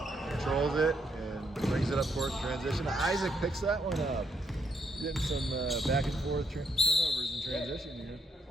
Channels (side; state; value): both; normal; correlation 0.74